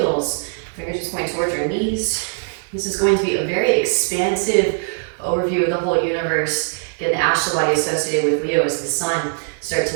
fingers just point towards your knees. This is going to be a very expansive overview of the whole universe. Again, the astral body associated with Leo is the sun. Start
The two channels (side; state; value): left; silent; 65 dB below the other